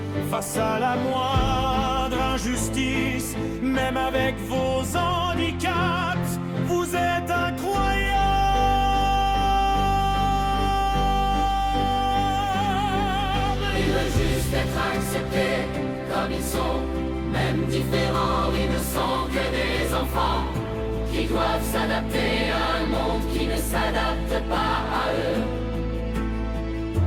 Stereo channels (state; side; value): identical; both; correlation 1.00